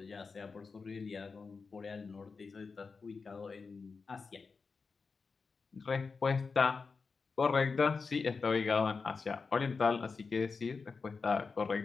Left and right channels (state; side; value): quieter; right; 4.7 dB